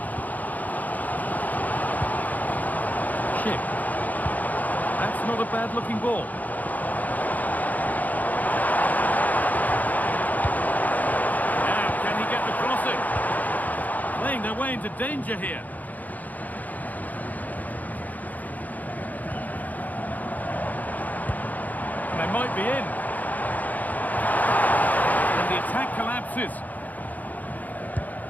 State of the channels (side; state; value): right; late; 0.080 ms